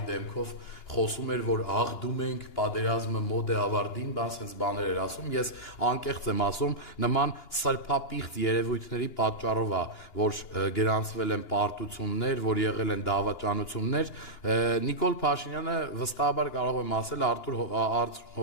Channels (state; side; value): late; right; 2.9 ms